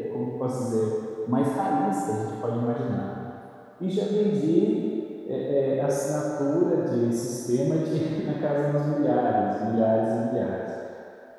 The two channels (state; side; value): identical; both; correlation 1.00